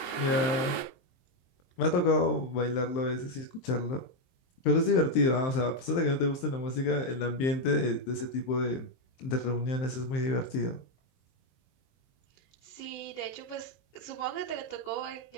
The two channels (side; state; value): right; late; 23 ms